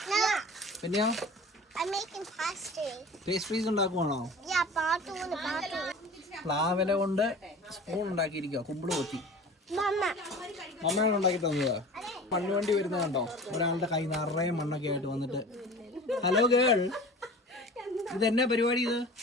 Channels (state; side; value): normal; both; correlation 0.40